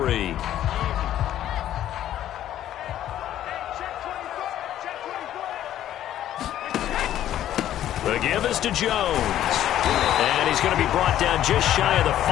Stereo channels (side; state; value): right; quieter; 12.0 dB